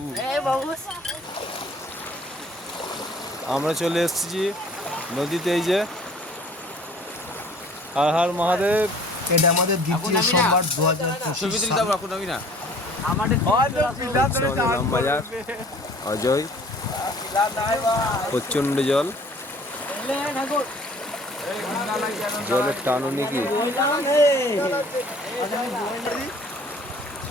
আমরা চলে এসেছি নদীতে। এই যে হর হর মহাদেব। এটা আমাদের দ্বিতীয় সোমবার 2025 সাল। ইলামবাজার অজয়, প্রচন্ড জল, জলের টানো নাকি।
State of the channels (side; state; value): both; normal; correlation 0.52